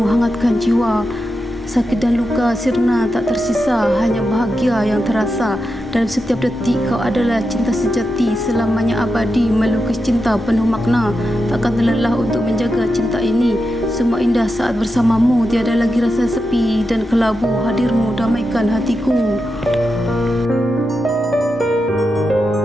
hangatkan jiwa. Sakit dan luka sirna tak tersisa, hanya bahagia yang terasa. Dalam setiap detik kau adalah cinta sejati, selamanya abadi melukis cinta penuh makna. Takkan terlelah untuk menjaga cinta ini. Semua indah saat bersamamu, tiada lagi rasa sepi dan kelabu. Hadirmu damaikan hatiku.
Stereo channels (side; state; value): both; normal; correlation 0.88